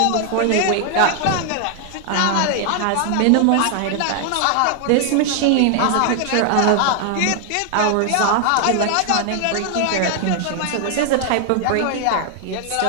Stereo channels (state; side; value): different; both; correlation 0.00